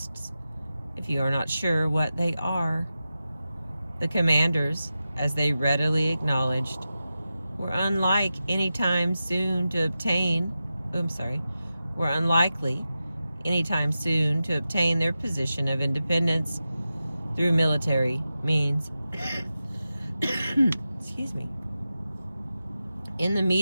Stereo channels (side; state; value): both; inverted; correlation -0.92